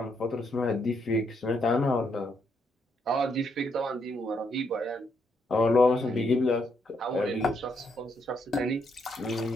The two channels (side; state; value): both; normal; correlation 0.76